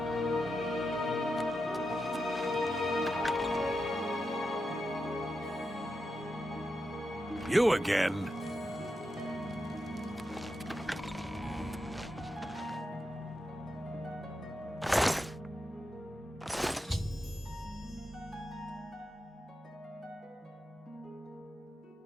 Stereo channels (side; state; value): both; normal; correlation 0.87